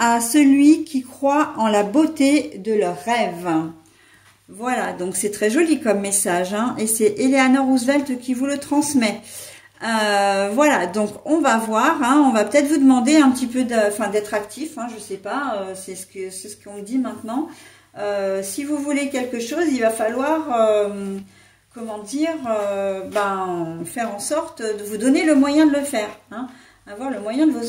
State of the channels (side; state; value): both; identical; correlation 1.00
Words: celui qui croit en la beauté de leurs rêves. Voilà, donc c'est très joli comme message, hein, et c'est Eleanor Roosevelt qui vous le transmet. Voilà, donc on va voir, hein, on va peut-être vous demander un petit peu d'être actif, hein, je sais pas, c'est ce qu'on me dit maintenant. Si vous voulez quelque chose, il va falloir... faire en sorte de vous donner le moyen de le faire, hein, avoir le moyen de